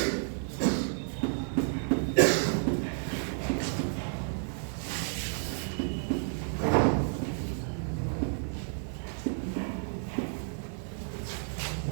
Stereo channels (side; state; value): left; silent; digital silence